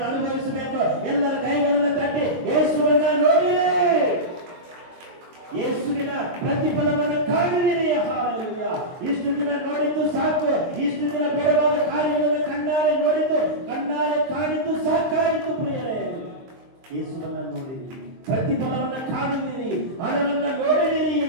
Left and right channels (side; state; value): left; late; 23 ms